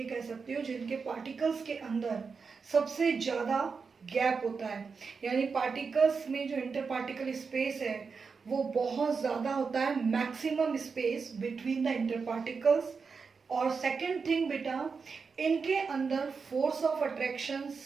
कह सकते हो जिनके पार्टिकल्स के अंदर सबसे ज़्यादा गैप होता है। यानी पार्टिकल्स में जो इंटर पार्टिकल स्पेस है वो बहुत ज़्यादा होता है, maximum space between the inter particles. और सेकंड थिंग बेटा, इनके अंदर फोर्स ऑफ अट्रैक्शन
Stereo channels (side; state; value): left; quieter; 5.2 dB